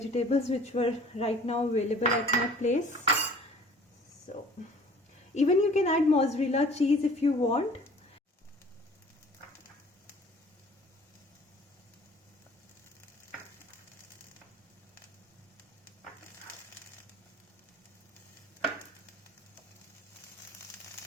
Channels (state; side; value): normal; both; correlation 0.49